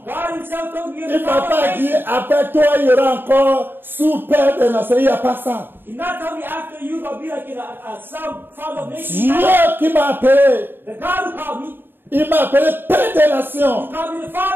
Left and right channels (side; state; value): left; late; 0.098 ms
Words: God himself told me you're Il the ne m'a father pas of dit, nations. après toi, il y aura encore sous-Père des nations. Il n'y a pas ça. He did not tell me after you will be like a son, father of nations. Dieu qui m'a appelé, The God who called me, il m'a appelé Père des nations. he called me the